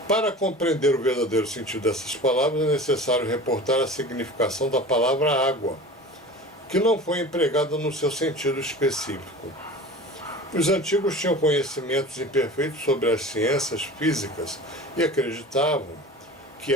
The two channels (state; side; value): normal; both; correlation 0.36